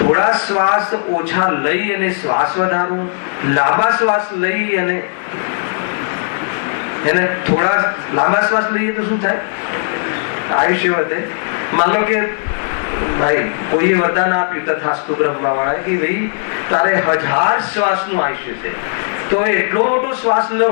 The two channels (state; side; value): silent; right; digital silence